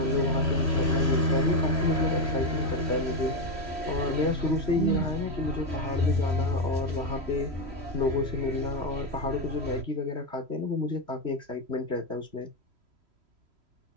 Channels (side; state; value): left; late; 3.1 ms